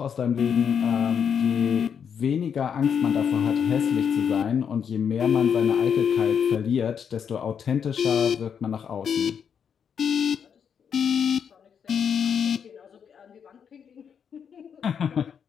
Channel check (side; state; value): right; quieter; 7.4 dB